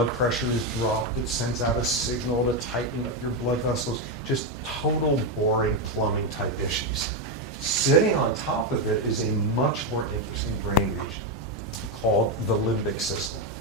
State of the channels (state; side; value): normal; both; correlation 0.07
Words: pressure is dropped, it sends out a signal to tighten up your blood vessels. Just total boring plumbing type issues. Sitting on top of it is a much more interesting brain region called the limbic system.